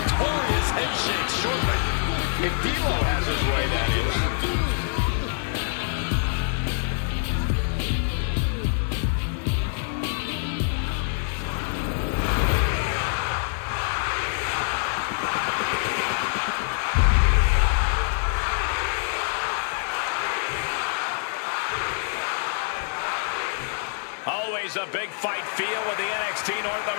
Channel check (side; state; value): right; silent; 61 dB below the other